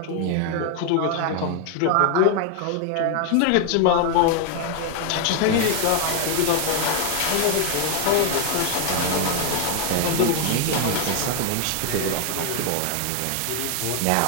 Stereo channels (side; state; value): both; different; correlation 0.01